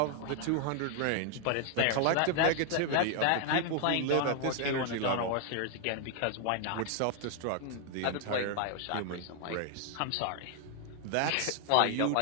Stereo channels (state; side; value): different; both; correlation 0.00